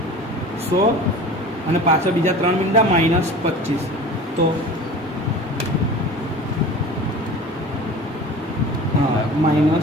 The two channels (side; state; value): both; normal; correlation 0.38